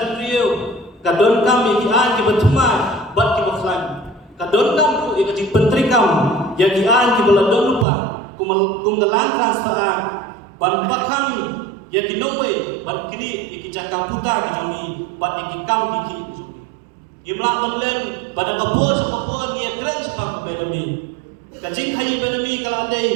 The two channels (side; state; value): left; drops out; at 7.9 s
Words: beliau kadon kami kian ki berteman bat ki baklan. Kadon kam tu ia kajing bantrikam yang kian ki beladon lupa kumgelan transfer ban bakam yang ki nowe ban kini iki jakam puta ki jomi bat iki kam ki jomi. Imla menlen pada kapur sekapur ia keren sebab kebedami. kajing khayi benami kala